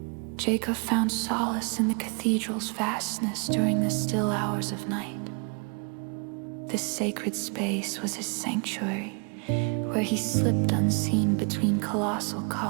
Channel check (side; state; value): left; quieter; 35.7 dB